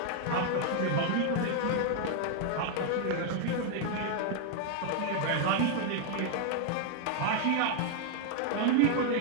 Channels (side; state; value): both; different; correlation 0.00